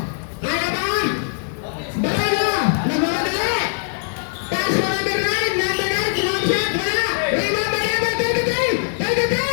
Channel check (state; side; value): silent; right; digital silence